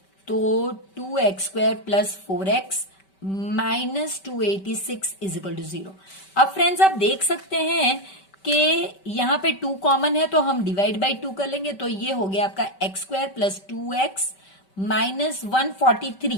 तो 2x square plus 4x minus 286 is equal to 0। अब फ्रेंड्स, आप देख सकते हैं कि यहां पे 2 कॉमन है, तो हम डिवाइड बाई 2 कर लेंगे। तो ये हो गया आपका x square plus 2x minus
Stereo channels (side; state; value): right; late; 5.2 ms